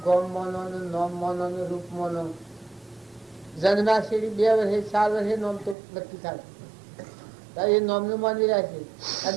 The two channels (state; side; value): drops out; left; at 5.8 s